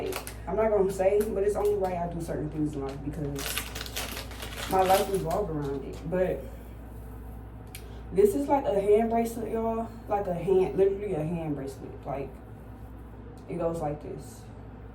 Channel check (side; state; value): both; identical; correlation 1.00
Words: I'm not gonna say, but it's only right I do certain things in life because my life revolves around it. But this is like a hand bracelet, y'all. Like a hand, literally a hand bracelet. Like, it goes like this.